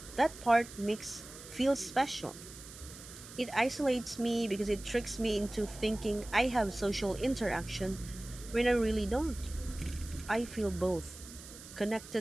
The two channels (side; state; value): right; noise; hiss, 15 dB below the sound